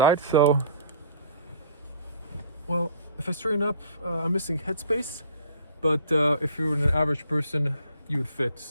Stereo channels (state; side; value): inverted; both; correlation -0.52